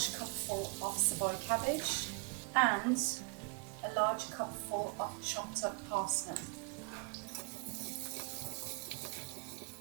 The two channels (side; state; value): left; quieter; 34.1 dB